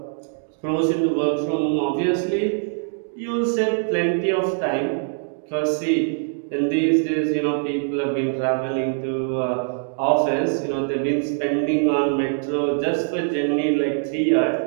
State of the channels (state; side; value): silent; left; digital silence